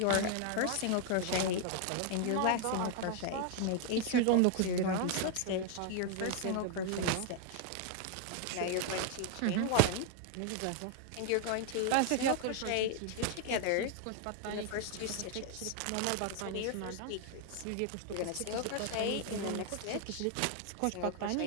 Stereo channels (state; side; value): different; both; correlation 0.00